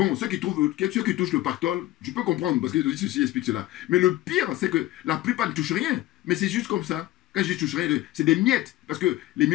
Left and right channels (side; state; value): right; quieter; 15.8 dB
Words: ceux qui touchent le pactole, je peux comprendre, parce que ceci explique cela. Mais le pire, c'est que la plupart ne touchent rien. Mais c'est juste comme ça. Quand je dis touche rien, c'est des miettes. Parce que les